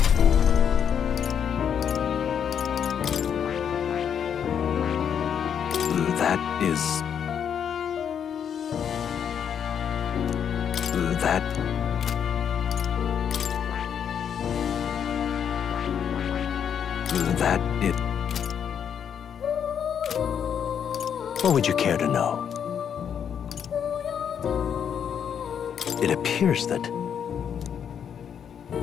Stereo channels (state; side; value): quieter; right; 8.1 dB